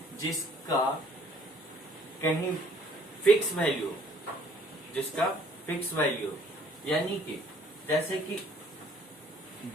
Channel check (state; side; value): normal; both; correlation 0.59